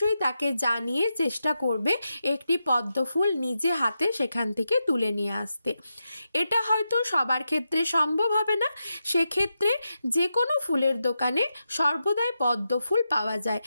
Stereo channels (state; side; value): inverted; both; correlation -0.87